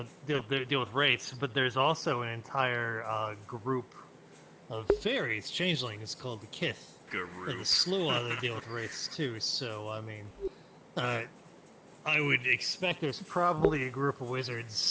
deal with wraiths, but there's also an entire group of fairies, changelings, called the Kith. And the Slua that deal with wraiths too. So I mean, I would expect there's probably a group of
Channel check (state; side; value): identical; both; correlation 1.00